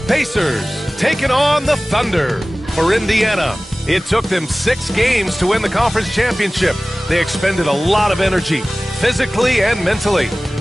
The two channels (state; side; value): normal; both; correlation 0.98